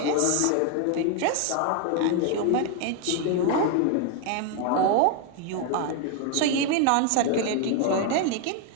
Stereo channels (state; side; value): different; both; correlation 0.01